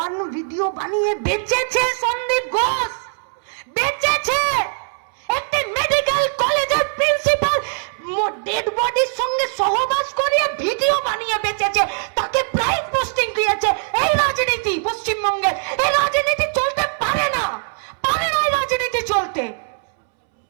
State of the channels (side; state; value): left; silent; 65 dB below the other